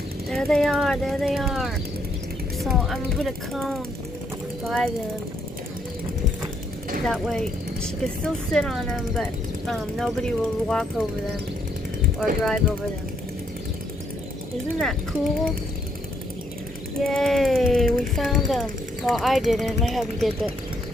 There they are, there they are. So I'm gonna put a cone by them. That way she can still sit on them, but nobody will walk over them or drive over them. Isn't that cool? Yay, we found them. Well, I didn't, my hubby did, but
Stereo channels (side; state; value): both; normal; correlation 0.72